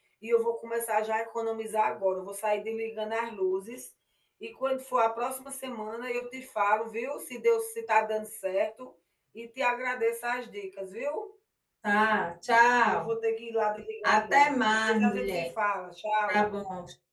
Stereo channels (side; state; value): both; identical; correlation 1.00